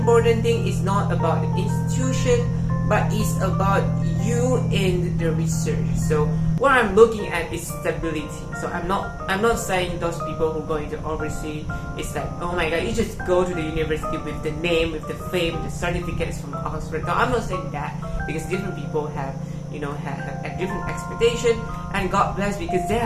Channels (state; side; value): identical; both; correlation 1.00